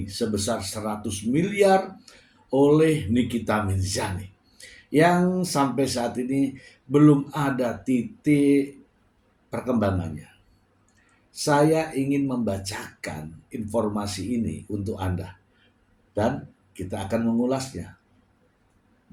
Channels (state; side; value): identical; both; correlation 1.00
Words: sebesar 100 miliar oleh Nikita Mirzani yang sampai saat ini belum ada titik perkembangannya. Saya ingin membacakan informasi ini untuk Anda dan kita akan mengulasnya